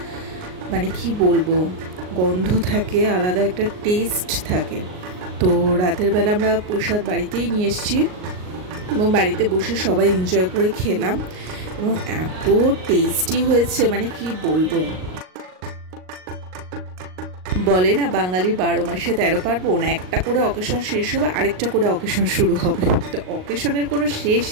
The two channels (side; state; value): left; late; 38 ms